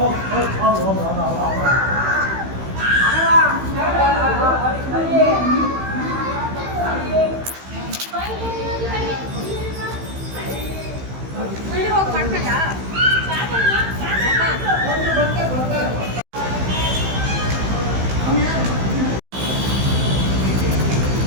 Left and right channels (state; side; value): late; left; 15 ms